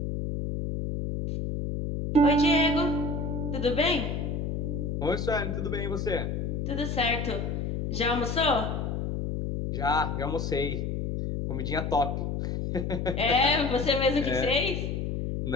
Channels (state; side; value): noise; left; hum, 2 dB below the sound